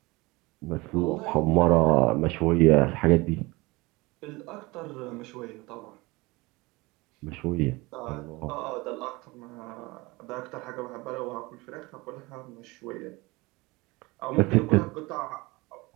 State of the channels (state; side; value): quieter; left; 23.3 dB